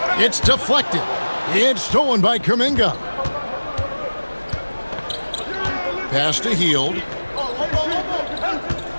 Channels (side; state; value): both; inverted; correlation -1.00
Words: It's deflected. It's stolen by Kuminga. Pass to Hield.